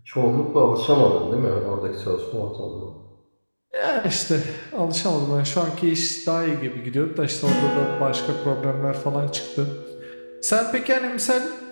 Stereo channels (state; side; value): inverted; both; correlation -1.00